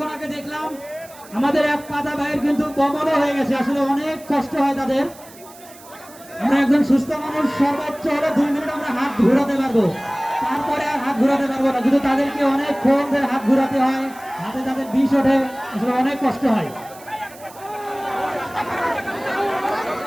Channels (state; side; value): noise; right; hiss, 21 dB below the sound